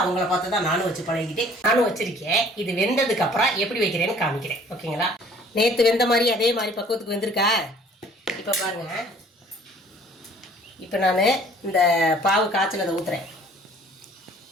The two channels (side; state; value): both; normal; correlation 0.54